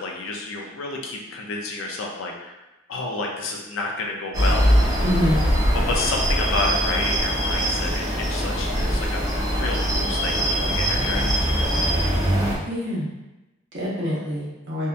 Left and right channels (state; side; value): normal; both; correlation 0.63